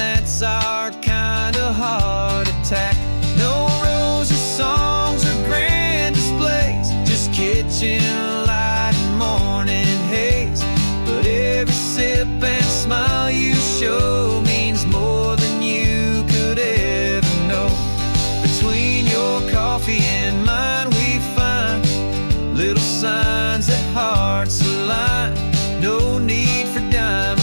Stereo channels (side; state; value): both; inverted; correlation -1.00